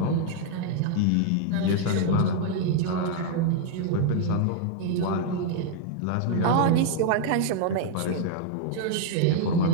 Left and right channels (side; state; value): both; different; correlation 0.00